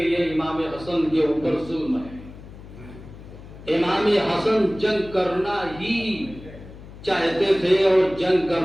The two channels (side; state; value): left; noise; hum, 17 dB below the sound